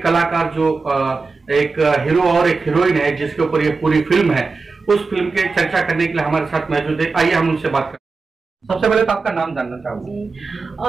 जो एक हीरो और एक हीरोइन है जिसके ऊपर ये पूरी फिल्म है, उस फिल्म के चर्चा करने के लिए हमारे साथ मौजूद है। आइए हम उनसे बात करें। सबसे पहले तो आपका नाम जानना चाहूंगा।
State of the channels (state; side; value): quieter; left; 4.3 dB